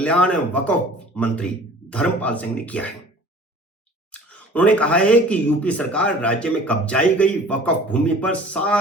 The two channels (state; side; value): normal; both; correlation 0.47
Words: वक्फ मंत्री धर्मपाल सिंह ने किया है। उन्होंने कहा है कि यूपी सरकार राज्य में कब्जाई गई वक्फ भूमि पर